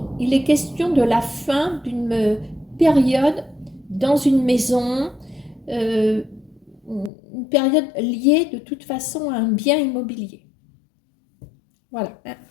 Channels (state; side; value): drops out; right; at 7.1 s